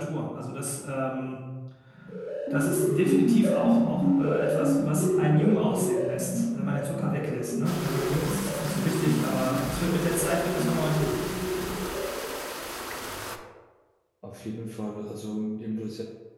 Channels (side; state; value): both; identical; correlation 1.00